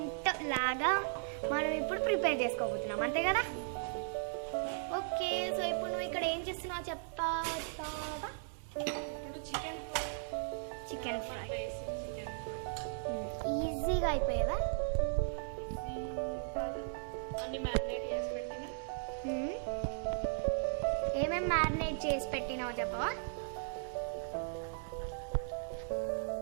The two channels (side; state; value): left; silent; 53 dB below the other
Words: లాగా మనం ఇప్పుడు ప్రిపేర్ చేసుకోబోతున్నాం, అంతే కదా? ఓకే, సో ఇప్పుడు నువ్వు ఇక్కడ ఏం చేస్తున్నావు చెప్తావా? ఇప్పుడు చికెన్ చికెన్ ఫ్రై. చికెన్ ఈజీగా అయిపోయేదా? అన్ని మ్యారినేట్ చేసి పెట్టిన. ఏమేమి మ్యారినేట్ చేసి పెట్టినావో చెప్పవా?